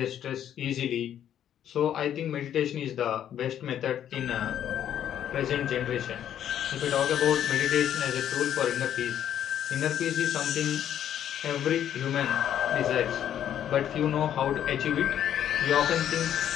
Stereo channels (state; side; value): quieter; right; 10.2 dB